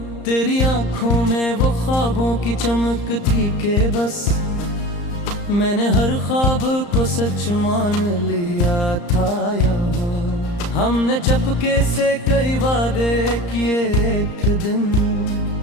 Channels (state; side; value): late; right; 34 ms